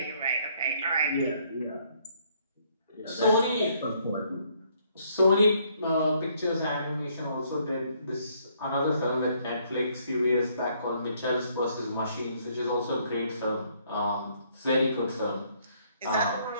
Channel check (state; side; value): inverted; both; correlation -0.68